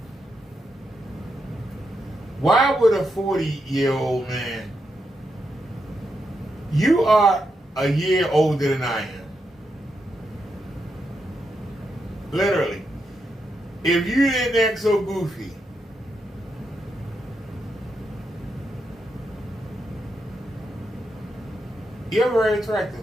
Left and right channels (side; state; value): both; normal; correlation 0.83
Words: Why would a 40-year-old man? You are a year older than I am. Literally. If you didn't act so goofy, you're very